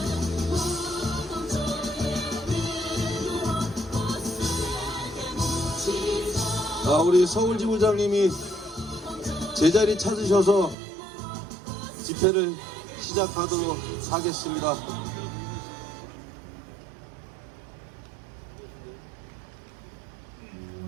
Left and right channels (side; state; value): left; drops out; at 10.8 s